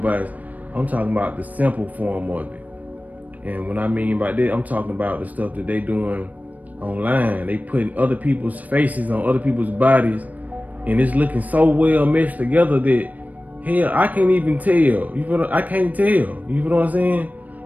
I'm talking about the simple form of it. And when I mean by that, I'm talking about the stuff that they doing online. They putting other people's faces on other people's bodies, and it's looking so well meshed together that hell, I can't even tell. You feel? I can't tell. You feel what I'm saying?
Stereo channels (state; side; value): late; left; 0.076 ms